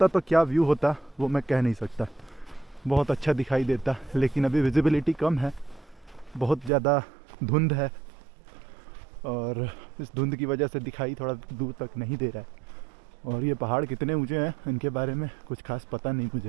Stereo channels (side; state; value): left; drops out; at 6.7 s